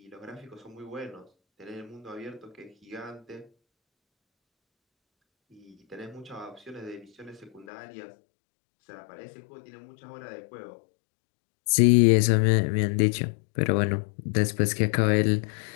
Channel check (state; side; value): drops out; right; at 7.7 s